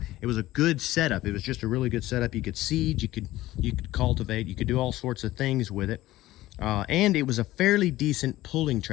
it was a good setup. It was just a really good setup. You could seed, you could cultivate, you could do all sorts of things with it. And it was a fairly decent pulling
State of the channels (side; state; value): right; quieter; 16.3 dB